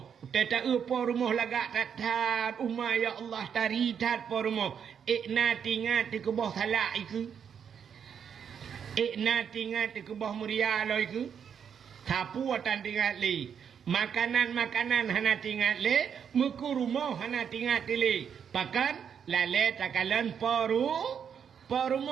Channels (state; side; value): quieter; left; 7.7 dB